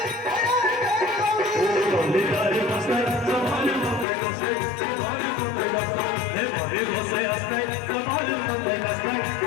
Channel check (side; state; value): right; drops out; at 4.0 s